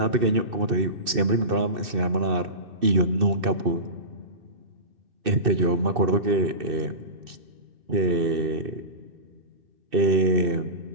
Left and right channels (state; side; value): late; left; 2.6 ms